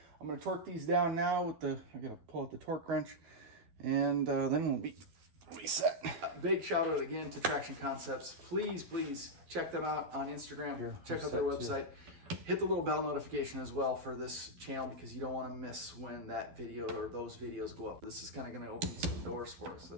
I'm going to torque these down now with the. I got to pull out the torque wrench. And then we'll be reset. Big shout out again to Traction Concepts. Please check them out on Instagram. Check out their website. Hit the little bell notification as well for this channel, because you don't want to miss when that video or those videos go up. This is kind of going to open some doors for us.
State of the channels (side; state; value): left; late; 12 ms